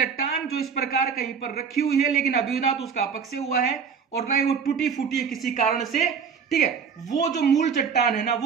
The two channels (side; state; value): left; quieter; 6.4 dB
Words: जो इस प्रकार कहीं पर रखी हुई है, लेकिन अभी ना तो उसका अपक्षय हुआ है और ना ही वो टूटी फूटी है किसी कारण से, ठीक है। वो जो मूल चट्टान है ना,